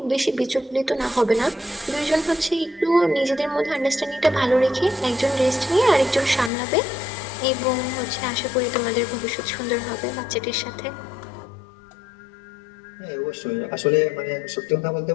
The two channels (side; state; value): right; drops out; at 6.5 s